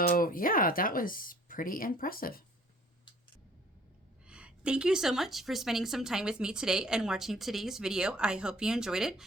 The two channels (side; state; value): both; normal; correlation 0.55